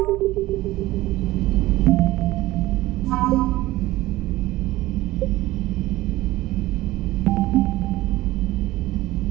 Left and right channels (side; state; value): left; quieter; 17.6 dB